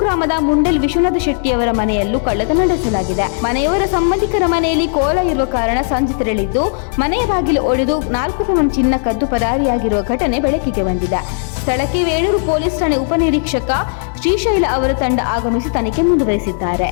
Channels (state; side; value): silent; right; digital silence